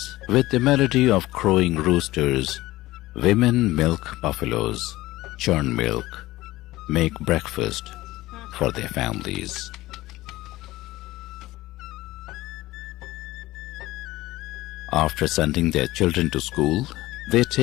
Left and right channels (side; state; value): right; quieter; 17.8 dB